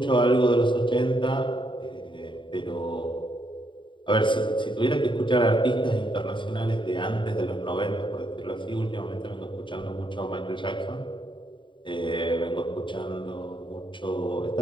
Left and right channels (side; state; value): right; late; 0.23 ms